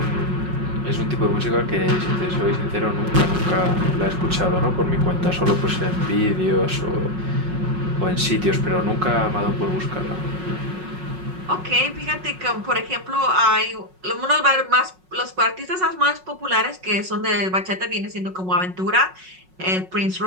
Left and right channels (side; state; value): left; late; 5.4 ms